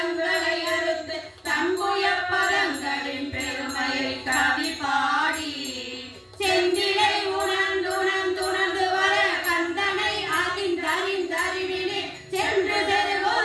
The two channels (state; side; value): identical; both; correlation 1.00